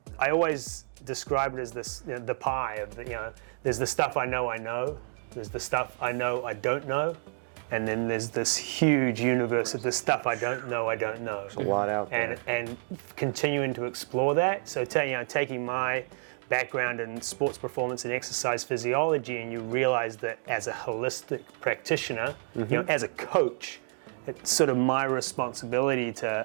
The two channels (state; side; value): silent; left; 58 dB below the other